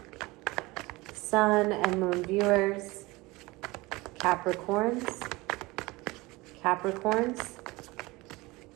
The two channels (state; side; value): quieter; left; 22.2 dB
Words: Sun and Moon viewers. Capricorns. Capricorns.